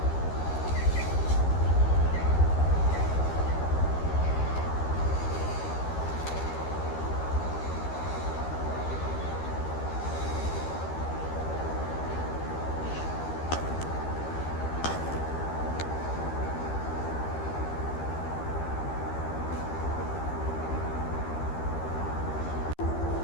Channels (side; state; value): right; late; 13 ms